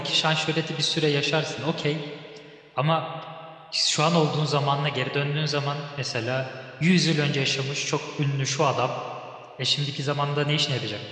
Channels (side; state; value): both; identical; correlation 1.00